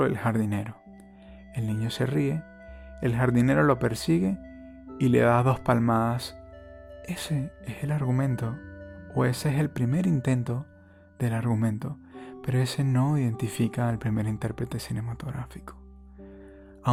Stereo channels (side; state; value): both; identical; correlation 1.00